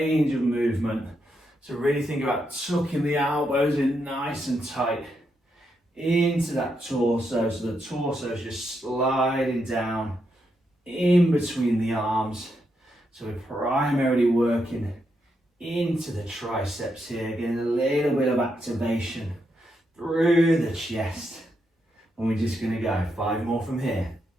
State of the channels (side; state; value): both; normal; correlation 0.81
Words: of movement. So really think about tucking the elbows in nice and tight into that torso. So the torso is just sliding down in between the arms. So we're primarily working into the triceps here, getting a little bit of activation through the chest. And we're just going to go 5 more from here.